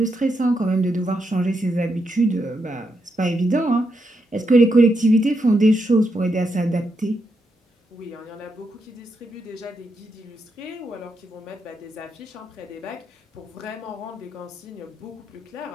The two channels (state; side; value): normal; both; correlation 0.82